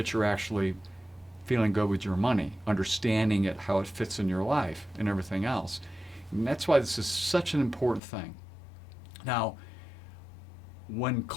you're actually feeling good with your money, understanding it, how it fits in your life, and everything else. And that's why this is such an important thing. Now, when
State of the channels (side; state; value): right; drops out; at 8.0 s